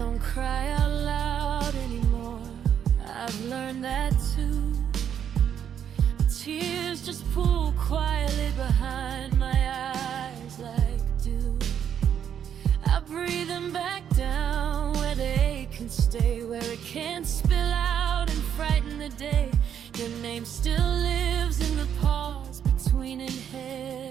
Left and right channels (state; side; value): quieter; left; 8.8 dB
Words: cry out loud anymore. I've learned that too. The tears just pool quietly behind my eyes like dew. I breathe them back down where they can stay, where it can't spill out and frighten the day. Your name still lives in the pause between